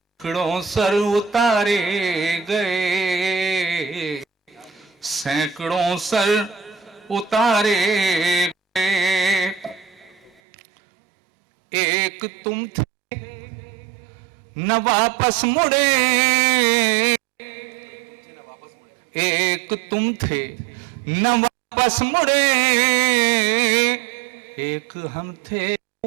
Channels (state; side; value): drops out; left; at 10.4 s